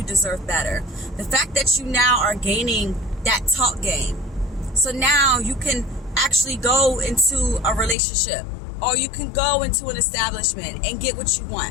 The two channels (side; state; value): right; drops out; at 8.0 s